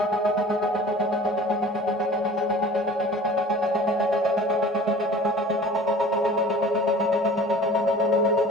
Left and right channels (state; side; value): normal; both; correlation 0.44